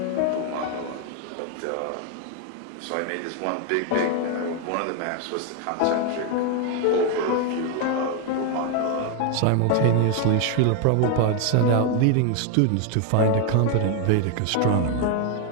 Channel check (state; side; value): different; both; correlation 0.01